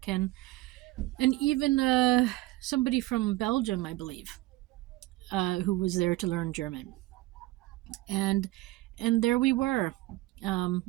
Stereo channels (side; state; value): left; quieter; 18.6 dB